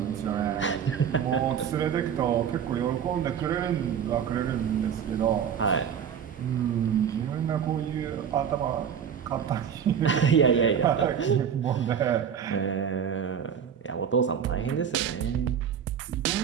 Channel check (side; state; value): left; quieter; 8.1 dB